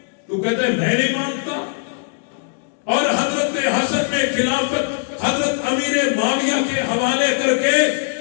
تو کہتے ہیں میں نہیں مانتا. اور حضرت حسن نے خلافت حضرت امیر معاویہ کے حوالے کر کے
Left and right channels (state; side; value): silent; right; digital silence